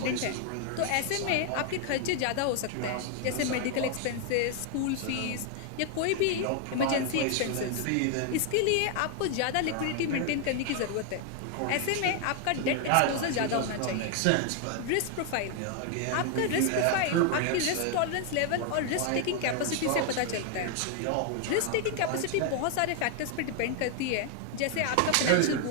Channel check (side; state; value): both; different; correlation 0.00